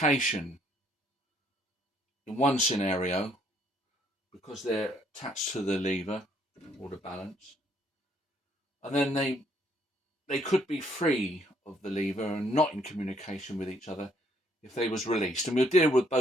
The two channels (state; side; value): normal; both; correlation 0.67